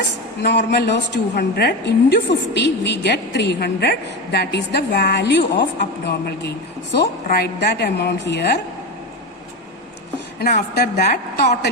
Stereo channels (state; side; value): normal; both; correlation 0.19